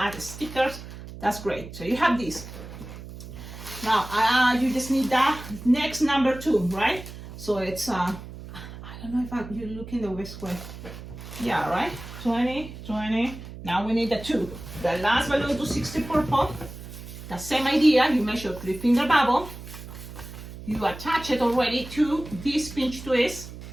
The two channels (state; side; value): noise; right; hum, 13 dB below the sound